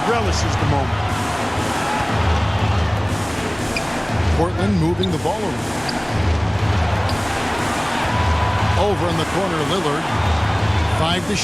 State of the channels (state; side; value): noise; left; hum, 22 dB below the sound